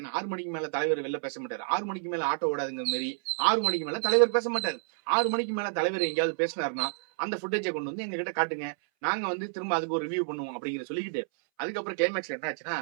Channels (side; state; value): left; silent; 58 dB below the other